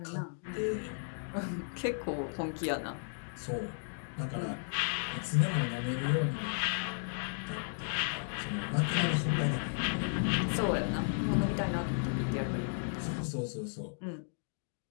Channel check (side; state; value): right; silent; digital silence